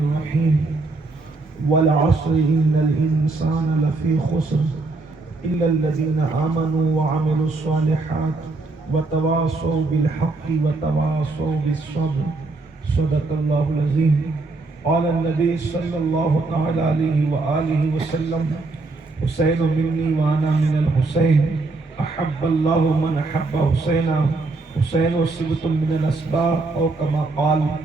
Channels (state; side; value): quieter; left; 3.4 dB